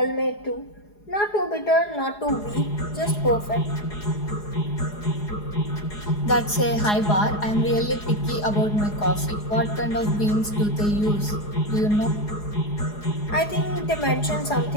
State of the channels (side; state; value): right; late; 4.8 ms